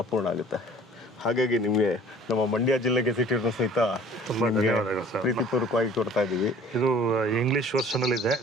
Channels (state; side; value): normal; both; correlation 0.50